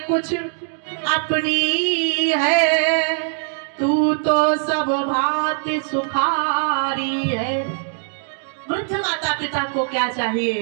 कुछ अपनी है, तू तो सब भांति सुखारी है। वृद्ध माता पिता को क्या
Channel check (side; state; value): left; silent; 59 dB below the other